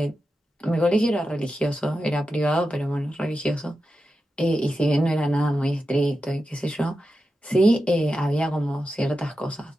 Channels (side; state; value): both; normal; correlation 0.90